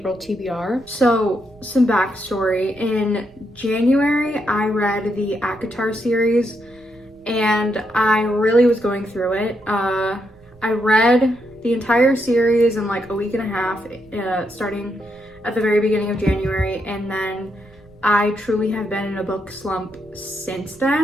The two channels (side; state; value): right; noise; rumble, 26 dB below the sound